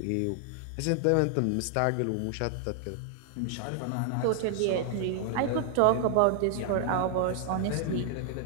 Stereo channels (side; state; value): both; different; correlation 0.00